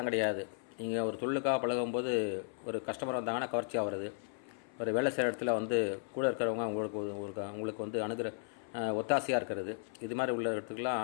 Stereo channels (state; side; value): silent; right; 54 dB below the other